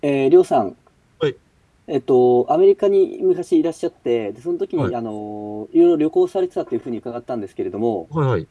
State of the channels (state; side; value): identical; both; correlation 1.00